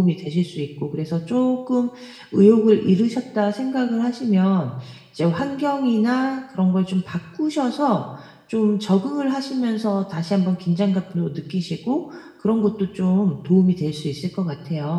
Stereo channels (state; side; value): identical; both; correlation 1.00